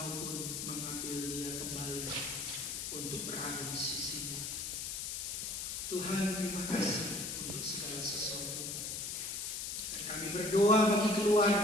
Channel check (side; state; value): left; noise; hiss, 4 dB below the sound